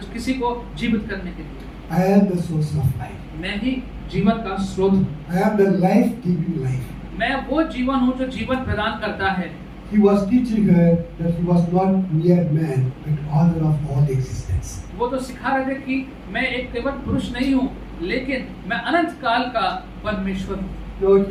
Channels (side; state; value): both; identical; correlation 1.00